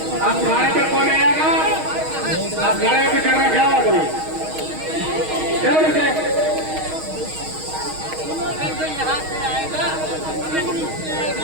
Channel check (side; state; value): left; late; 6.4 ms